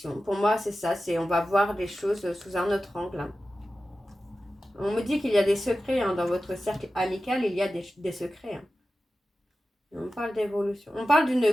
Pour moi, c'est ça. On va voir les choses sous un autre angle, hein. On me dit qu'il y a des secrets hein, dans votre cercle amical, il y a des secrets, hein. On parle d'évolution. On parle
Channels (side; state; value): both; normal; correlation 0.94